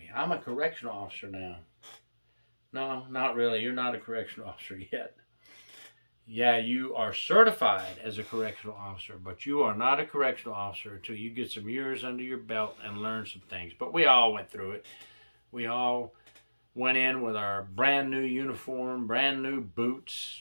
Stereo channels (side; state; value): both; inverted; correlation -1.00